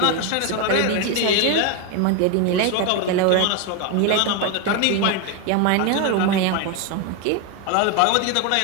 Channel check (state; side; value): different; both; correlation 0.02